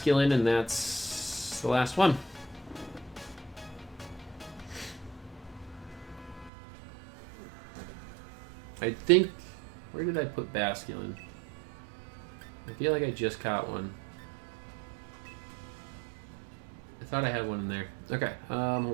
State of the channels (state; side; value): drops out; left; at 6.5 s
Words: and that's the last one. I think, where did I put Basculin? I feel like I just caught one. I thought I had one in there. Okay,